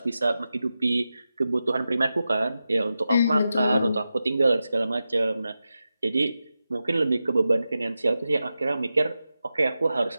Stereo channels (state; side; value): inverted; both; correlation -0.92